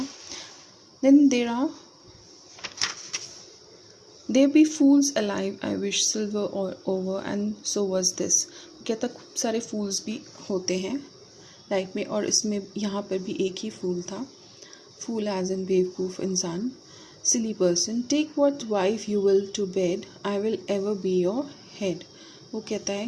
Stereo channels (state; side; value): identical; both; correlation 1.00